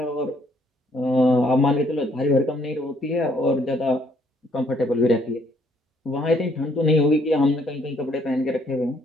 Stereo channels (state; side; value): normal; both; correlation 0.67